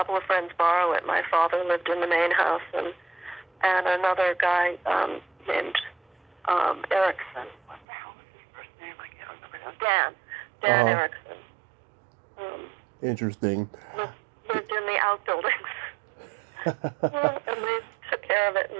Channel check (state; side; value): drops out; left; at 7.9 s